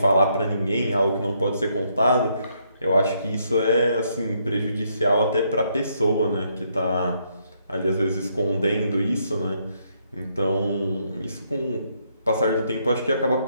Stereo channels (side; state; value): both; inverted; correlation -0.74